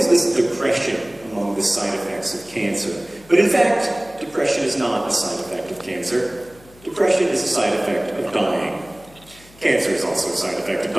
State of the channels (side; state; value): left; noise; hum, 25 dB below the sound